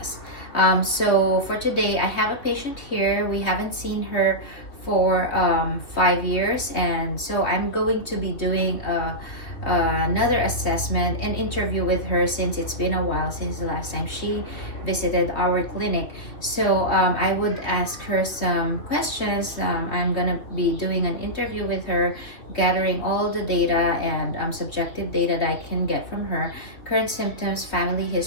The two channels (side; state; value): right; late; 2.9 ms